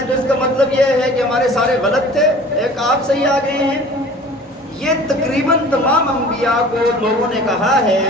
تو اس کا مطلب یہ ہے کہ ہمارے سارے غلط تھے، ایک آپ صحیح آ گئے ہیں۔ یہ تقریباً تمام انبیاء کو لوگوں نے کہا ہے،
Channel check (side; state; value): both; normal; correlation 0.45